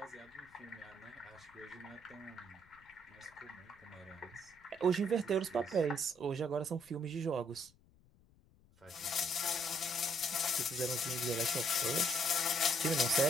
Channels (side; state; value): left; noise; rumble, 29 dB below the sound